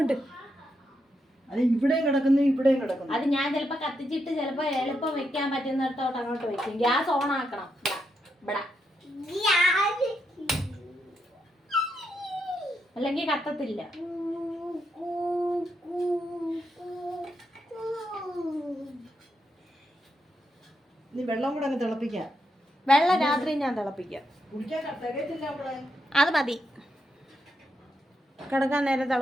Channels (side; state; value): both; normal; correlation 0.82